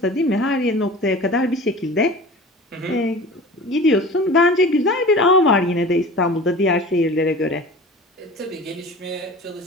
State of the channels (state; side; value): normal; both; correlation 0.38